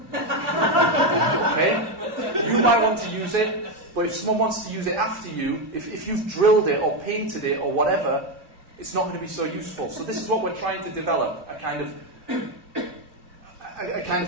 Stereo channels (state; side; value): late; left; 2.5 ms